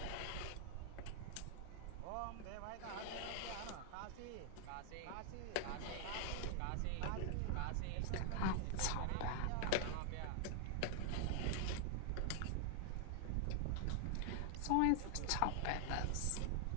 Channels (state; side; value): different; both; correlation 0.00